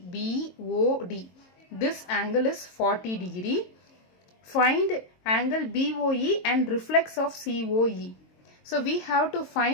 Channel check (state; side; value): late; right; 22 ms